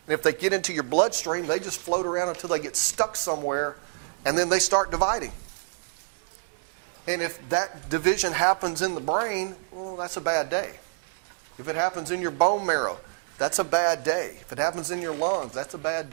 And if they get into your bloodstream, they just float around until they get stuck somewhere, and then they start dividing. And if that division happens in the brain, well, that's a bad day. If it happens in your bone marrow, that's a bad day. If it happens in your lungs, that's a bad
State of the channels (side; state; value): left; silent; digital silence